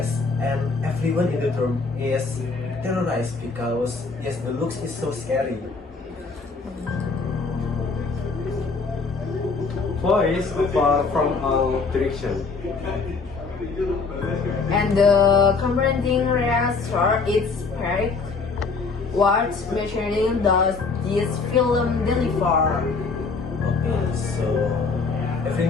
and everyone in the room is terrorized because yes, the looks is so scary. Voice far from all direction. And the confronting reactor is correct. What material does this film deliver? Okay, so every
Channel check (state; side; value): quieter; right; 4.4 dB